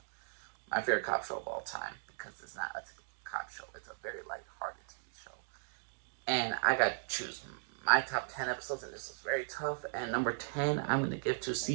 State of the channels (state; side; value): silent; left; digital silence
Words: My favorite cop show of all time, because it's not a typical cop show. It's a very light-hearted TV show. And I got to choose my top 10 episodes, and this is very tough. And number 10, I'm going to give to